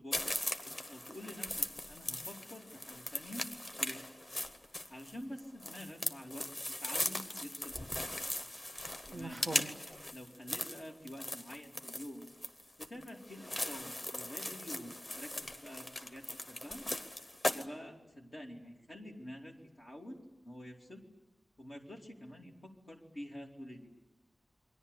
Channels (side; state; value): both; normal; correlation 0.96